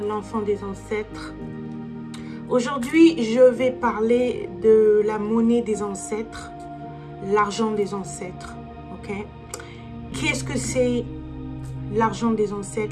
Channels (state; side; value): identical; both; correlation 1.00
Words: l'enfant des ancêtres. Aujourd'hui, je vais parler de la monnaie des ancêtres, l'argent des ancêtres. Ok. Qu'est-ce que c'est l'argent des